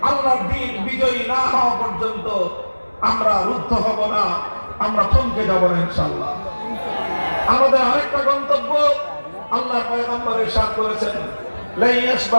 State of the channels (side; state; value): both; inverted; correlation -1.00